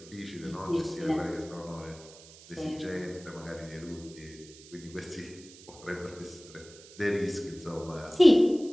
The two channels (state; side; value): noise; right; hiss, 20 dB below the sound